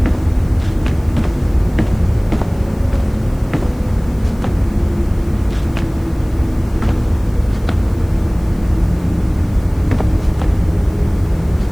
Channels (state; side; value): noise; left; hiss, 27 dB below the sound